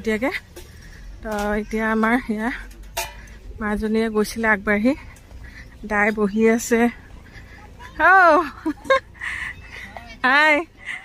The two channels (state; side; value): identical; both; correlation 1.00